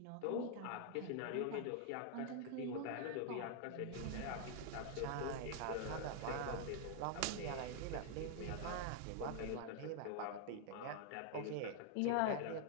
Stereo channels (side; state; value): both; different; correlation 0.00